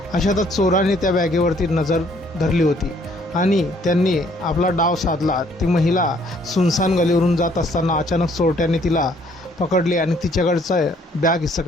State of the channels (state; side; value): normal; both; correlation 0.63